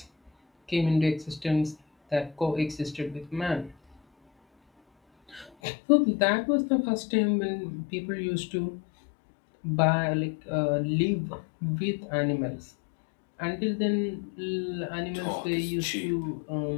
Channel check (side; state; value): right; drops out; at 5.5 s